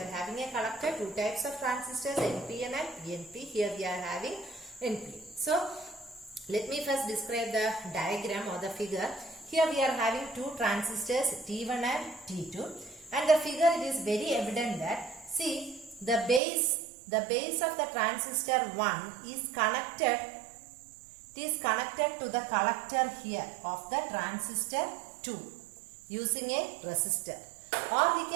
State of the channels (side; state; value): left; drops out; at 16.4 s